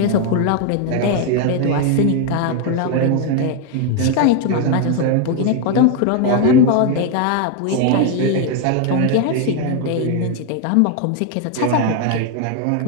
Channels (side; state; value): both; different; correlation 0.01